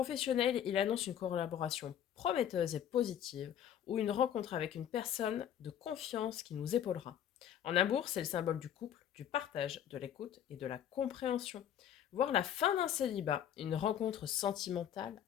il annonce une collaboration prometteuse et positive ou une rencontre avec une personne de confiance qui nous épaulera. En amour, c'est le symbole du couple, du partage, de l'écoute et de la compréhension. Voir la fin d'un célibat, une rencontre sentimentale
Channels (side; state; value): right; quieter; 9.9 dB